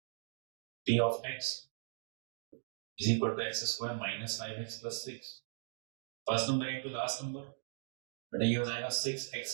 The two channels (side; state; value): left; silent; digital silence